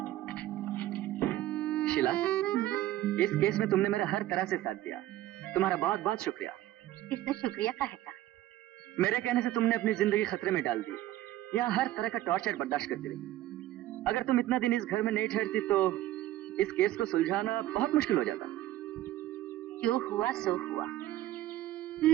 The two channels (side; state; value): left; quieter; 14.5 dB